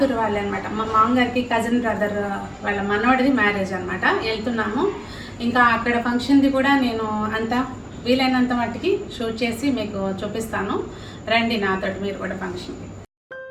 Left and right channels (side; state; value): both; identical; correlation 1.00